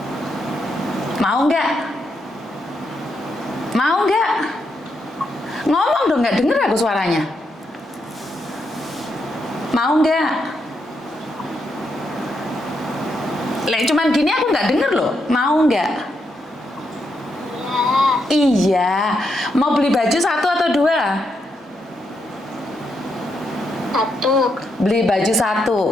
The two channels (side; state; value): both; normal; correlation 0.81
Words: Mau nggak? Mau nggak? Ngomong dong, nggak denger aku suaranya. Mau nggak? Cuman gini aku nggak denger loh. Mau nggak? Iya, mau beli baju 1 atau 2? 1. Beli baju